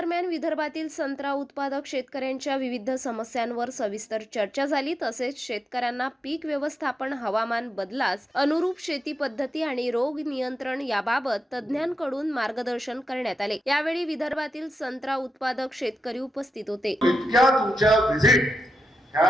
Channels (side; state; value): both; normal; correlation 0.88